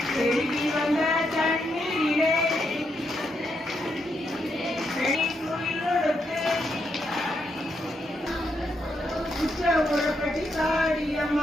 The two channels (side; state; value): both; normal; correlation 0.80